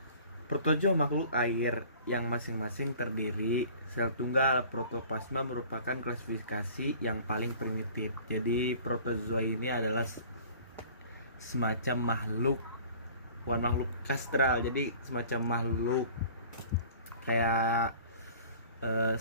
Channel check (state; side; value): inverted; both; correlation -0.48